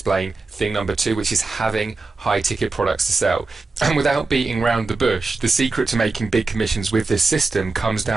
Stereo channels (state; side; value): quieter; left; 3.7 dB